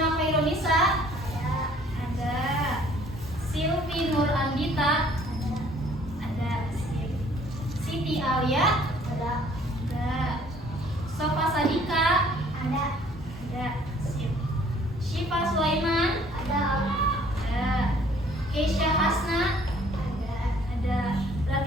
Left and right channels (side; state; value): both; normal; correlation 0.58